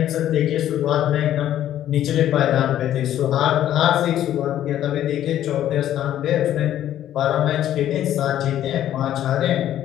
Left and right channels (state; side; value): quieter; right; 11.8 dB